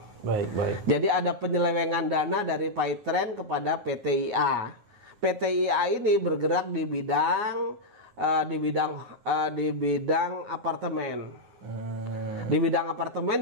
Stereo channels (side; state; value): left; late; 9.5 ms